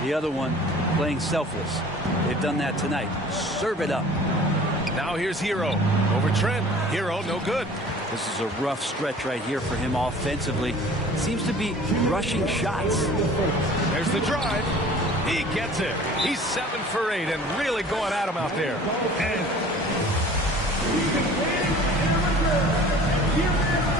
The other one, playing selfless. They've done that tonight. Serve it up. Now here's Hero. Over Trent. Hero, no good. This is a rough stretch right here for him offensively. Seems to be rushing shots. There's the drive. He gets it. He's 7 for 8 and really going at him out there.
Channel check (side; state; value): both; normal; correlation 0.47